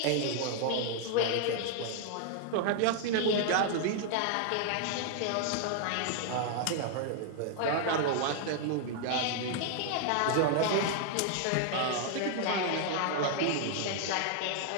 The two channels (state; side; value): different; both; correlation 0.00